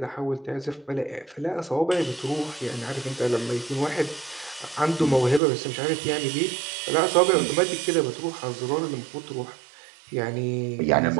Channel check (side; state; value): left; drops out; at 5.4 s